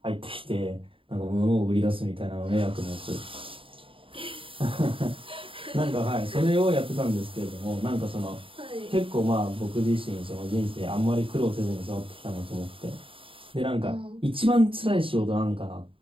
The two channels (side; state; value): left; late; 0.26 ms